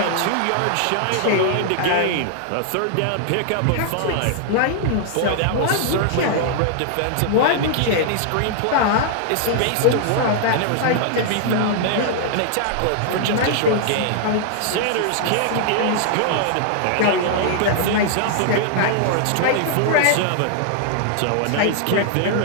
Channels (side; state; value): both; different; correlation -0.01